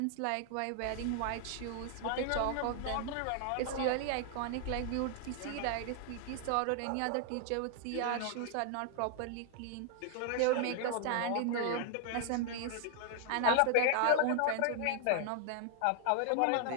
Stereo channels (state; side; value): different; both; correlation 0.00